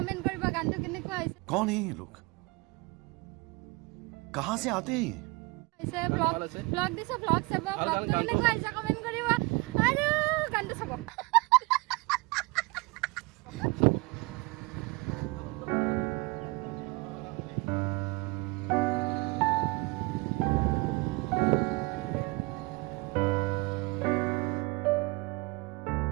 কৰিব গানটো কেনেকুৱা হৈছে कौन है ये लोग कहां से आते हैं ব্লগ দিছে ব্লগ চাব ব্লগটো কেনেকুৱা হৈছে কমেণ্ট কৰিব আৰু গানটো চাব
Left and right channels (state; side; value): quieter; left; 25.3 dB